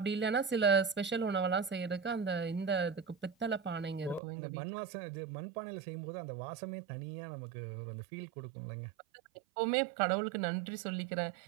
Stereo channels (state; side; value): drops out; left; at 4.2 s